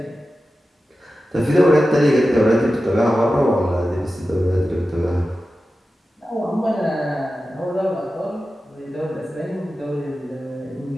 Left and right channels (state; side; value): normal; both; correlation 0.93